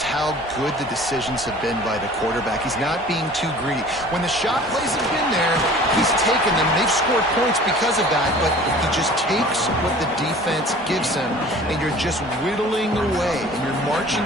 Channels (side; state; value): both; normal; correlation 0.46